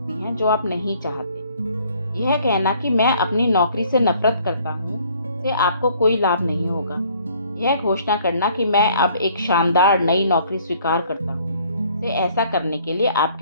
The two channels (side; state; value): both; inverted; correlation -0.59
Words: हैं जो आप नहीं चाहते। यह कहना कि मैं अपनी नौकरी से नफरत करता हूँ से आपको कोई लाभ नहीं होगा। यह घोषणा करना कि मैं अब एक शानदार नई नौकरी स्वीकार करता हूँ से ऐसा करने के लिए